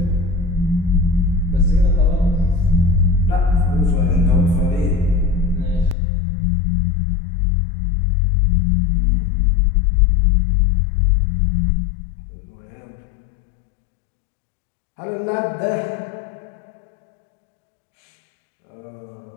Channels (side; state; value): right; drops out; at 6.0 s